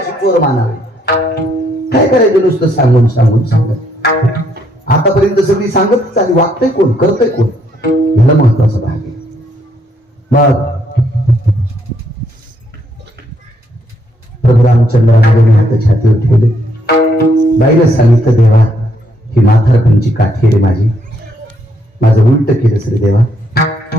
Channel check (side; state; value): both; normal; correlation 0.72